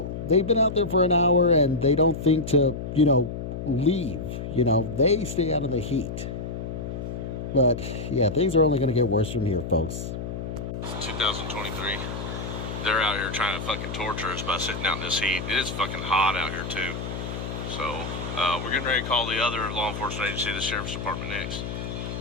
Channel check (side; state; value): left; noise; hum, 6 dB below the sound